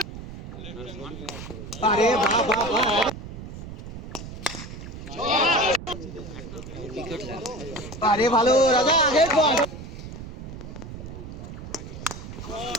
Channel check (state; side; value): noise; right; rumble, 10 dB below the sound